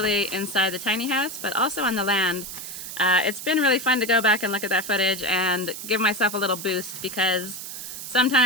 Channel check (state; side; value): noise; right; hiss, 9 dB below the sound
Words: inside the tiny house, but also on the land. It's been really fun to go back and look at that footage and give myself a little boost, because